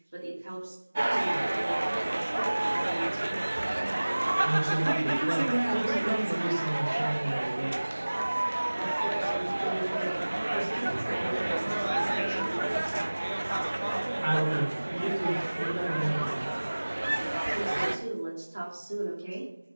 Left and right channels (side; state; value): both; inverted; correlation -1.00